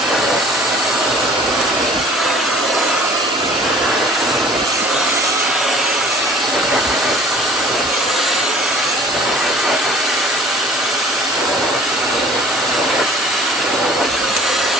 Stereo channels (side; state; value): both; normal; correlation 0.50